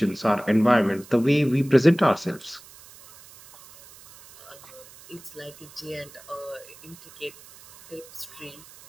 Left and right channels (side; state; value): right; noise; hiss, 21 dB below the sound